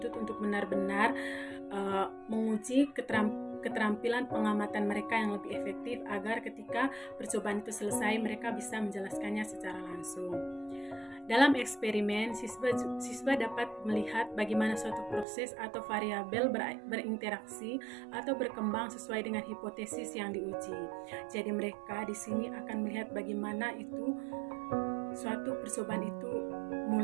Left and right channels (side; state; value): left; drops out; at 15.2 s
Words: untuk benar-benar menguji keterampilan pengamatan mereka yang lebih efektif agar ketika percobaan itu selesai mereka bisa menjelaskannya secara langsung. Dalam eksperimen, siswa dapat melihat bagaimana suatu proses atau variabel berinteraksi atau berkembang sesuai dengan hipotesis yang diuji. Jadi mereka di sini akan melihat bagaimana suatu percobaan itu